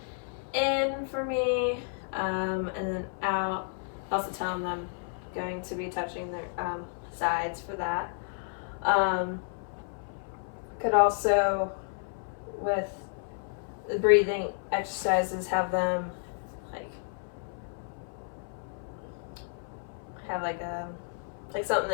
in for me, and then out. Also tell them I'm going to be touching their sides for that. Could also, with the breathing exercises, have them have like something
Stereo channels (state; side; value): silent; right; 57 dB below the other